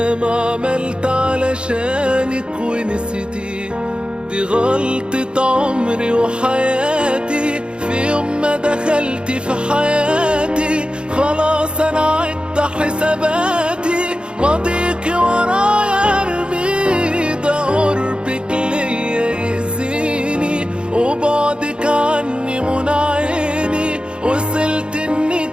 عملت علشانك ونسيتيه. دي غلطة عمري وحياتي، في يوم ما دخلتي في حياتي خلاص انا عدت حساباتي. ماضيكي ورايا ارمي، ده قربك ليا يأذيني وبعدك عني منى عيني. وصلت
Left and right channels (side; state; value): left; late; 0.054 ms